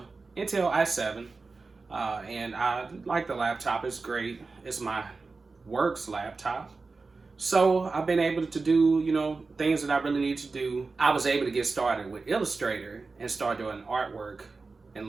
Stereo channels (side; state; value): left; quieter; 4.0 dB